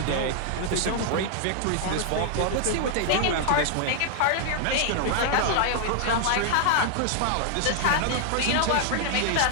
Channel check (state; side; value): different; both; correlation 0.00